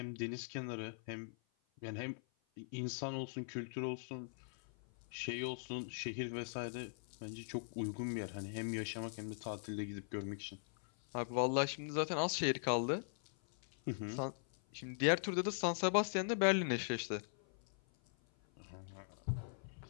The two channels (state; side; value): silent; right; 50 dB below the other